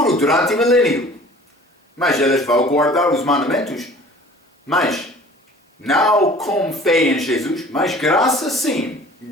durante o milênio. Mas eles vão guardar os mandamentos. Mas não com fé em Jesus, mas graça sim.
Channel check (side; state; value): both; normal; correlation 0.47